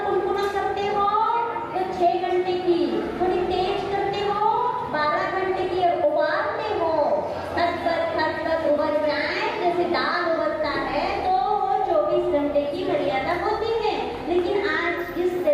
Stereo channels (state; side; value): identical; both; correlation 1.00